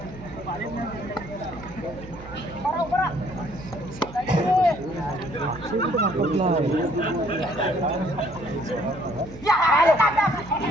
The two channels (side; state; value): right; noise; hum, 16 dB below the sound